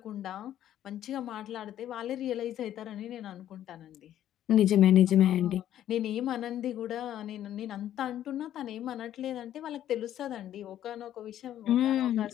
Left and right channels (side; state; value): right; quieter; 11.6 dB